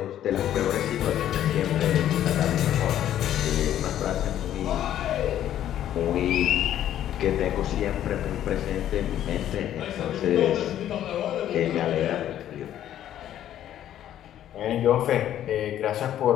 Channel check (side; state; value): right; quieter; 11.5 dB